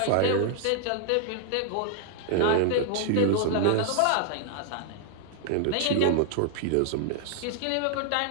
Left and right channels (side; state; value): both; different; correlation 0.00